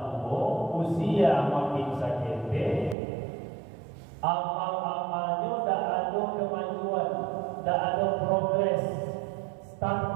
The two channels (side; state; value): left; drops out; at 3.0 s